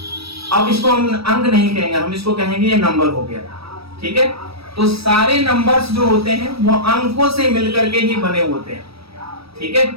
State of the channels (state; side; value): late; left; 0.77 ms